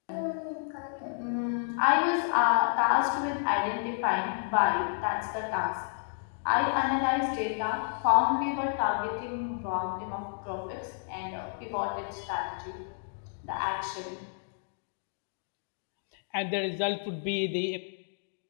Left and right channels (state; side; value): silent; right; digital silence